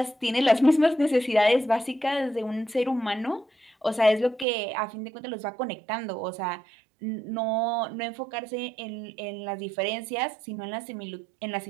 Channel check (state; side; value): drops out; left; at 4.5 s